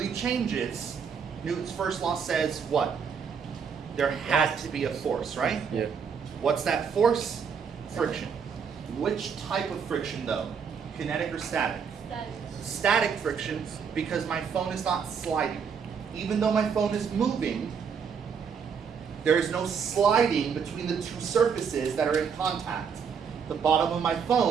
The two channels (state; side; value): quieter; left; 6.5 dB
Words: changes, Newton's first law says what? There has to be a force, right? Yeah. What's that force? Friction. Which type of friction though? Kinetic or static? Static. Static friction, because my phone is not sliding. Even though my phone is moving, there is no sliding between the two surfaces that are in contact. The bottom of my